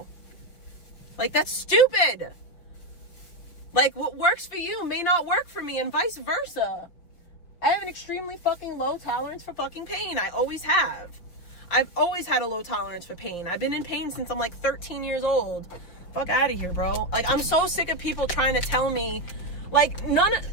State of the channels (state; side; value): late; right; 6.0 ms